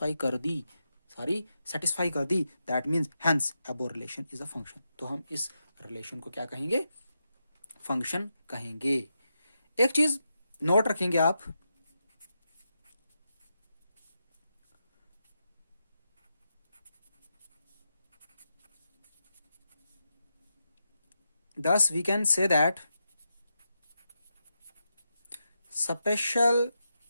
कर दी, सारी सेटिस्फाई कर दी। That means hence above relation is a function. तो हम इस रिलेशन को क्या कहेंगे? फंक्शन कहेंगे। एक चीज नोट रखेंगे आप, thus we can say that special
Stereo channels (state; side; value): inverted; both; correlation -0.86